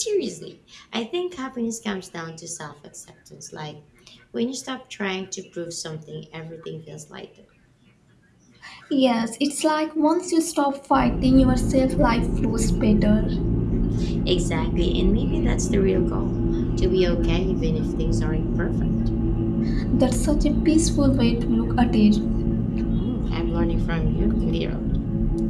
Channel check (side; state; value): both; identical; correlation 1.00